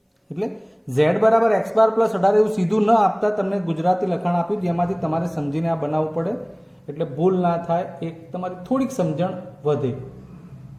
એટલે z બરાબર x બાર પ્લસ 18 એવું સીધું ન આપતા તમને ગુજરાતી લખાણ આપ્યું, જેમાંથી તમારે સમજીને આ બનાવવું પડે. એટલે ભૂલ ના થાય, એક તમારી થોડીક સમજણ વધે.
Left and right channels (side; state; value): both; identical; correlation 1.00